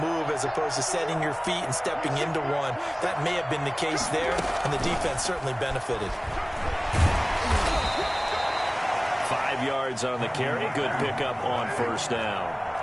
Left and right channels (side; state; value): both; identical; correlation 1.00